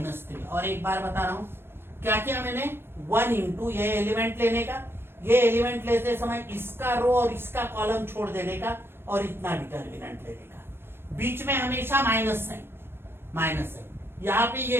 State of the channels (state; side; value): late; left; 0.11 ms